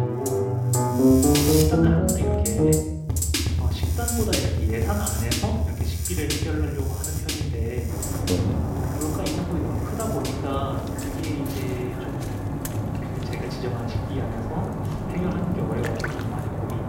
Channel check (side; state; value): both; identical; correlation 1.00